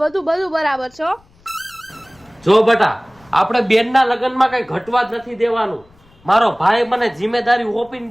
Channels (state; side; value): noise; left; rumble, 30 dB below the sound